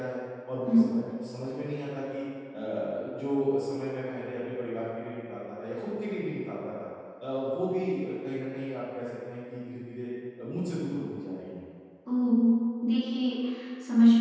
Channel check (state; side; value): identical; both; correlation 1.00